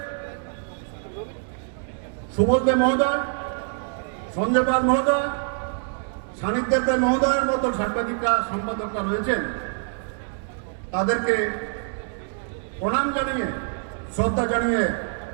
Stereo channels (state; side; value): silent; left; 62 dB below the other